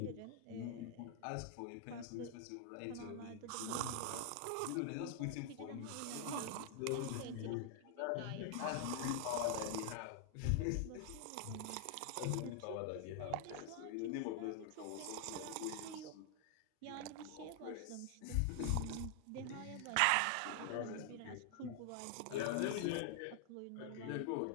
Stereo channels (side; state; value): both; different; correlation 0.00